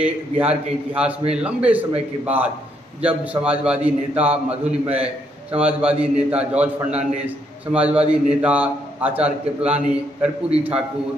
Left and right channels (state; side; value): normal; both; correlation 0.74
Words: बिहार के इतिहास में लंबे समय के बाद जब समाजवादी नेता मधुलिमय, समाजवादी नेता जॉर्ज फर्नांडिस, समाजवादी नेता आचार्य कृपलानी, कर्पूरी